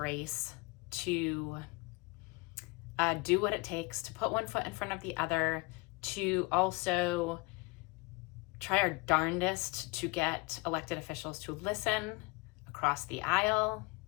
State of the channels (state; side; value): quieter; right; 25.7 dB